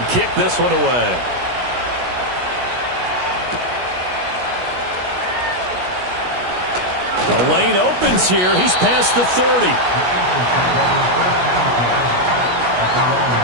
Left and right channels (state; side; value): late; left; 16 ms